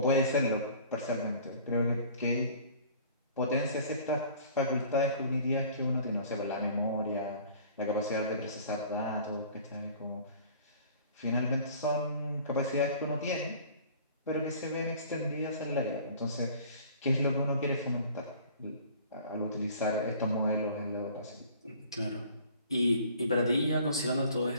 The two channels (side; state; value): both; inverted; correlation -0.49